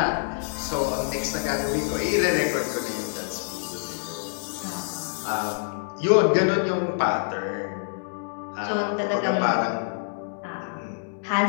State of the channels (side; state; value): right; silent; digital silence